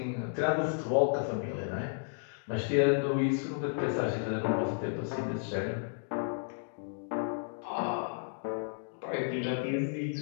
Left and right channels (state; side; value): silent; right; digital silence